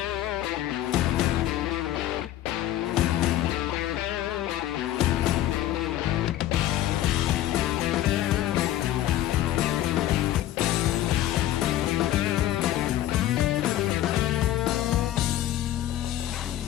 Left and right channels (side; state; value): right; quieter; 13.4 dB